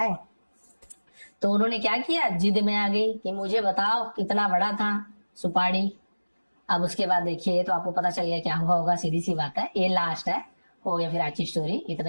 तो उन्होंने क्या किया, जिद में आ गई कि मुझे बताओ कितना बड़ा था सुपारी। अब उसके बाद देखिए तो आपको पता चल गया क्या हुआ होगा, सीधी सी बात है, ये लास्ट है हो गया फिर आज की स्टोरी, इतना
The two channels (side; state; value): both; inverted; correlation -1.00